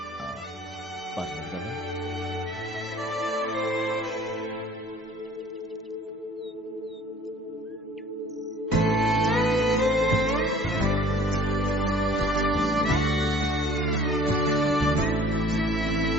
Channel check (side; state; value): both; normal; correlation 0.52